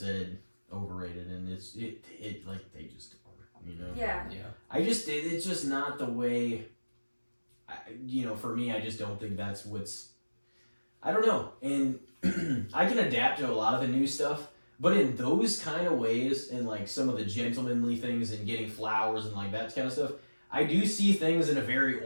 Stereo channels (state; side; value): inverted; both; correlation -1.00